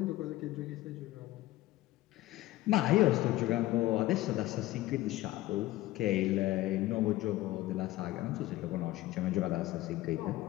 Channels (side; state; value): right; quieter; 16.5 dB